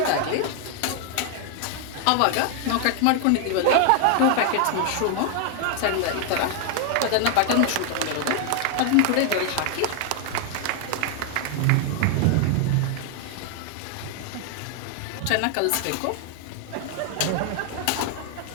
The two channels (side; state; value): both; different; correlation 0.00